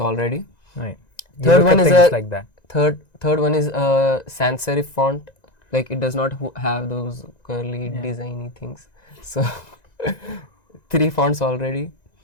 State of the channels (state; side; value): late; right; 1.9 ms